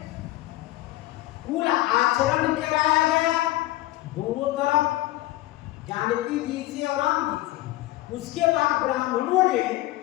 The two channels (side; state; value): right; quieter; 16.9 dB